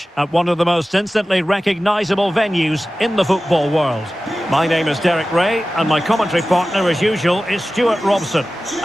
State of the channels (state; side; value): normal; both; correlation 0.95